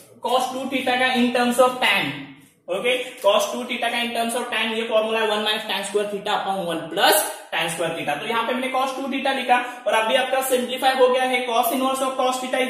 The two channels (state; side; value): identical; both; correlation 1.00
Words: cos 2 थीटा का in terms of tan। Okay, cos 2 theta का इन टर्म्स ऑफ tan ये फॉर्मूला है 1 minus tan square theta upon 1 plus tan square theta. तो यहाँ पे मैंने cos 2 थीटा लिखा, और अभी आपका सिंप्लीफाई हो गया है, cos inverse of cos theta